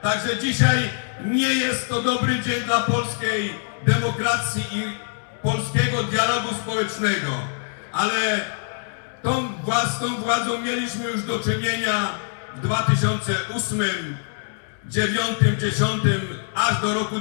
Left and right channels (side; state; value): right; silent; 61 dB below the other